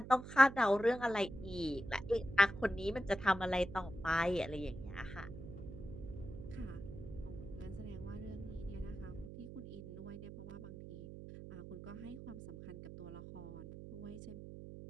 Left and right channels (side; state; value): right; noise; hum, 11 dB below the sound